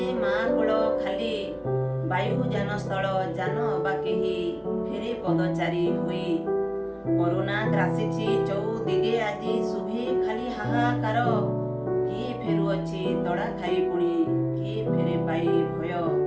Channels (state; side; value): identical; both; correlation 1.00